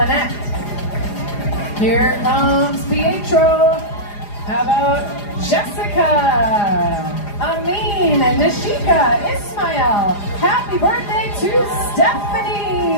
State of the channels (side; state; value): right; late; 4.9 ms